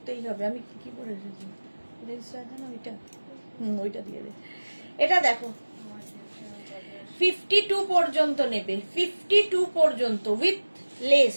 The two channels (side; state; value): both; inverted; correlation -1.00